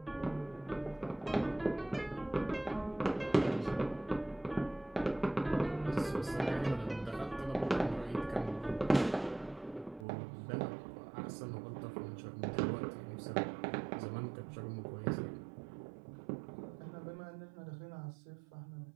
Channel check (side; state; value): left; drops out; at 10.1 s